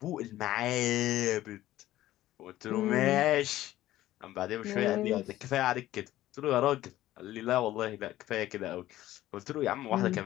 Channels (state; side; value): quieter; right; 14.7 dB